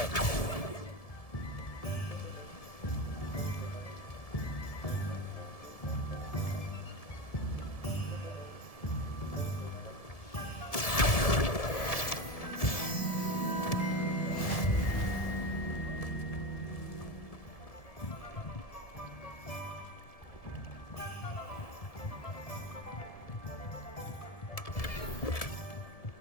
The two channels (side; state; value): right; late; 1.7 ms